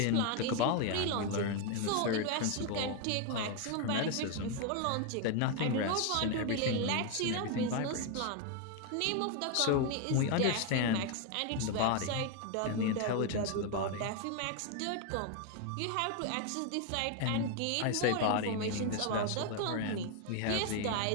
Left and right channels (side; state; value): both; different; correlation 0.01